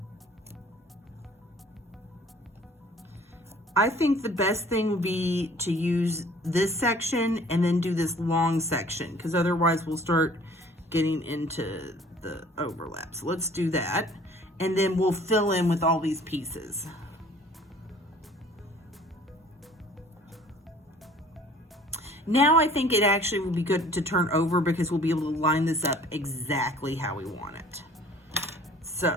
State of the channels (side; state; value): both; normal; correlation 0.52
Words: I think the best thing would be to use this section and then do this long section, because otherwise we'll start getting into the overlap. So let's do that. And then we'll fill in with all these pieces. Now I think it actually would be good to turn over, because we'll be able to line this up exactly how we want it.